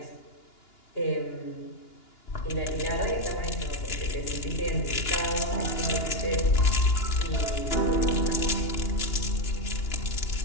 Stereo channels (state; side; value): late; right; 2.9 ms